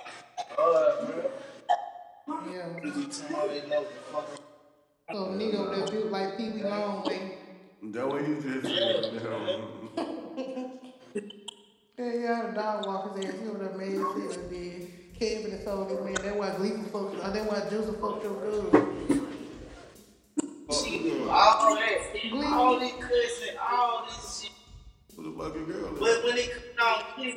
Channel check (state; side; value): identical; both; correlation 1.00